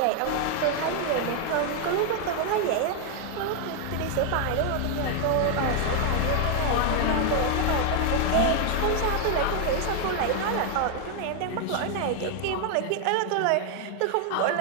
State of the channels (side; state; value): both; different; correlation 0.01